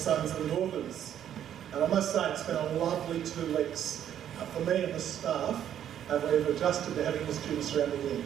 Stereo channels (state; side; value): quieter; left; 10.2 dB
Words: and daughters. And I must say it's been a lovely 2 weeks for me and the staff. We've adjusted to having the students around the year.